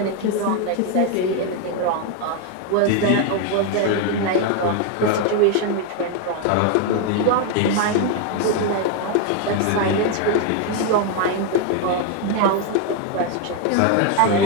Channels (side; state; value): both; different; correlation 0.01